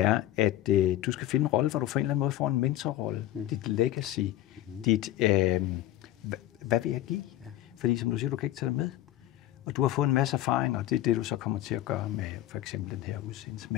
at du skal finde en rolle, hvor du på en eller anden måde får en mentorrolle, dit legacy, dit, hvad vil jeg give? Ja. Fordi som du siger, du kan ikke tage det med. Og du har fået en masse erfaring, og det er det, du så kommer til at gøre med for eksempel den her udsendelse.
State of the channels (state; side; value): quieter; right; 13.8 dB